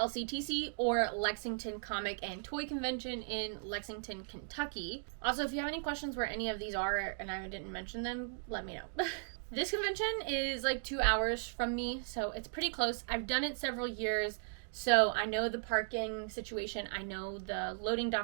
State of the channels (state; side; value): silent; left; digital silence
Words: or Lexington Comic and Toy Convention in Lexington, Kentucky. Also, if you have any questions where any of these are and I didn't mention them, let me know. This convention is like 2 hours from me, so it's pretty close. I've done it several years, so I know the parking situation, I know the loading